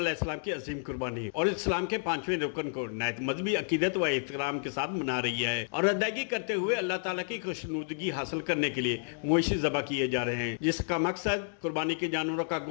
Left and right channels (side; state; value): right; silent; digital silence